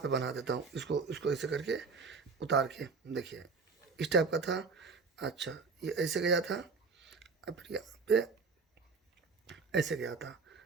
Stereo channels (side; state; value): left; quieter; 4.6 dB